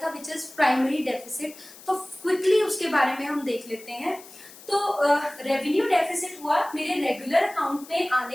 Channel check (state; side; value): noise; left; hiss, 19 dB below the sound